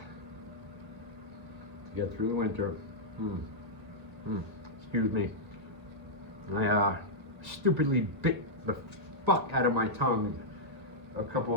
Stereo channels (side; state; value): left; late; 1.8 ms